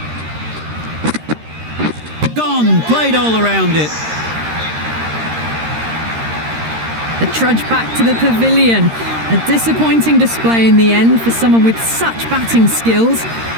Gone. Played all around it. The trudge back to the pavilion. A disappointing display in the end for someone with such batting skills.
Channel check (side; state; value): left; late; 13 ms